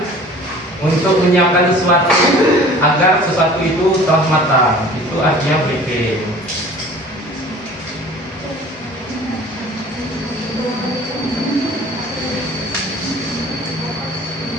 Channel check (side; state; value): both; normal; correlation 0.46